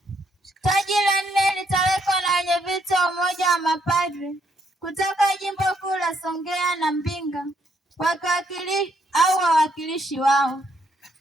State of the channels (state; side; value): normal; both; correlation 0.72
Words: Taji la nne litawekwa na wenyeviti wa Umoja wa Mapadre kutoka Jimbo Kuu la Songea na Mbinga au wawakilishi wao.